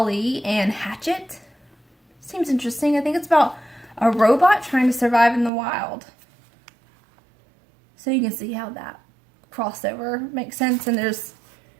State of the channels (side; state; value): left; drops out; at 5.5 s